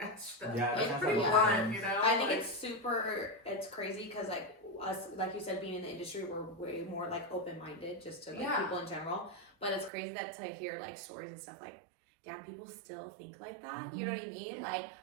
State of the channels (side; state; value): left; drops out; at 9.9 s